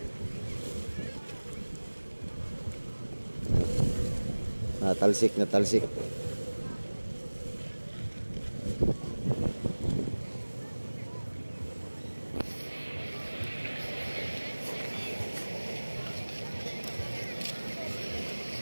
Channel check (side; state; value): both; inverted; correlation -1.00